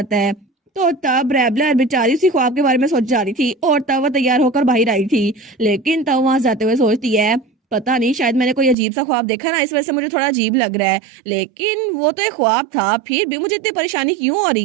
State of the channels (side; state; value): left; drops out; at 8.8 s